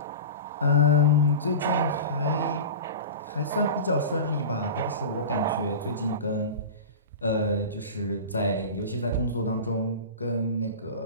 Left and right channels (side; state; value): both; inverted; correlation -0.30